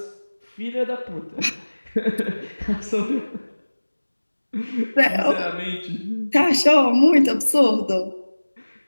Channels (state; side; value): inverted; both; correlation -1.00